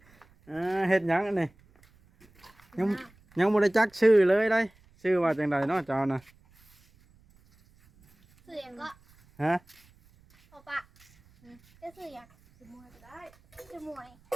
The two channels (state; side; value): noise; right; rumble, 30 dB below the sound